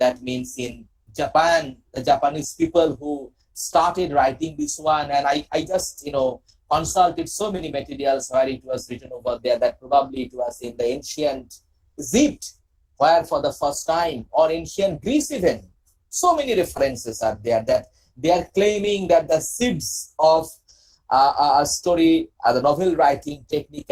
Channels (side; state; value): both; identical; correlation 1.00